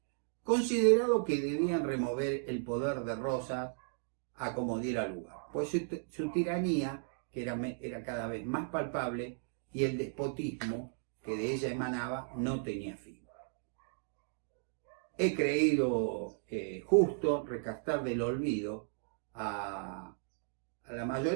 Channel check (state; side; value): silent; left; digital silence